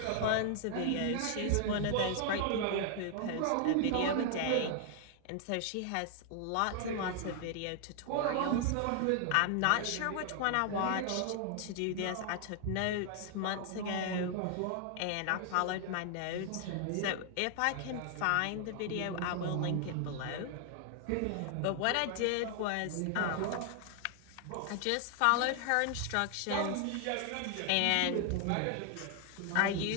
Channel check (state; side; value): different; both; correlation 0.00